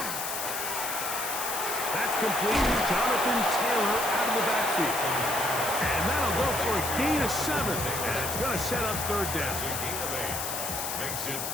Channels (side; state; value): left; noise; hiss, 4 dB below the sound